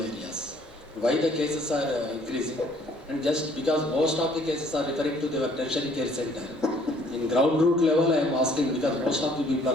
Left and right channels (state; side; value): normal; both; correlation 0.60